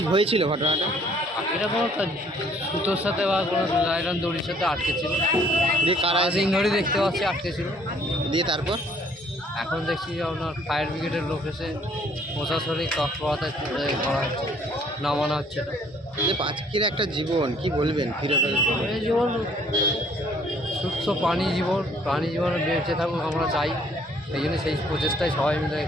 হয়েছিল ঘটনাটা? পাখিটা কোনো সুতোর সাথে বা কোনো লাইলন দড়ির সাথে আটকে ছিল। দিয়ে কারা সিং ধরে দেখতে পাচ্ছি আটকে ছিল। দিয়ে তারপর এখন দেখছি যে আপনার ফায়ার ব্রিগেডের লোক এসে প্রশাসনিক তৎপরতায় করা হচ্ছে, নামানো হচ্ছে না। যে পাখির একটা জীবন, কি বলবেন ফিরে পেলে? এই জীবন সুস্থ প্রাণী জীবনে বেঁচে থাকুক আমরা চাই, সেই জন্য সেই প্রচেষ্টায় সবাই মিলে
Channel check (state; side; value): normal; both; correlation 0.61